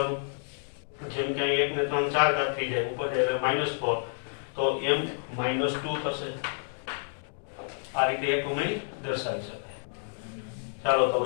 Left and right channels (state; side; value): silent; right; digital silence